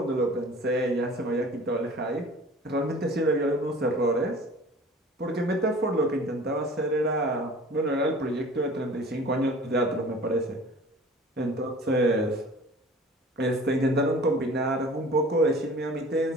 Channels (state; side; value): normal; both; correlation 0.44